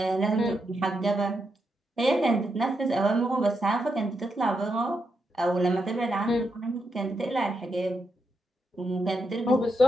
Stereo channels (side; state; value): both; normal; correlation 0.83